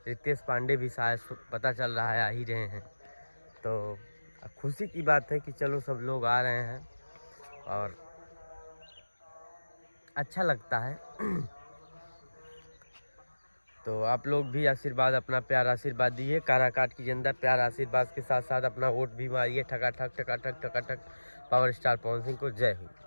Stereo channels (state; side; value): inverted; both; correlation -1.00